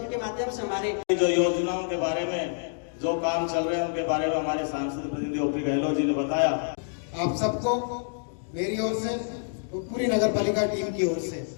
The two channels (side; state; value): right; silent; digital silence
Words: के माध्यम से हमारे जो योजनाओं के बारे में जो काम चल रहे हैं उनके बारे में हमारे सांसद प्रतिनिधि ओपी गहलोत जी ने बताया। आप सबको मेरी ओर से तो पूरी नगर पालिका टीम की ओर से